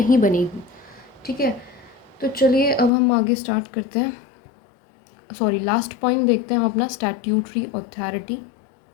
बनेगी, ठीक है। तो चलिए अब हम आगे स्टार्ट करते हैं, सॉरी लास्ट पॉइंट देखते हैं हम अपना, स्टैट्यूटरी अथॉरिटी।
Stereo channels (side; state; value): right; drops out; at 2.9 s